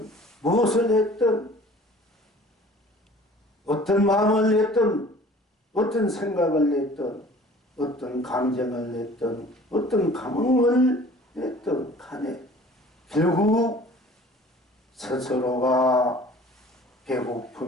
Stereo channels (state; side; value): normal; both; correlation 0.48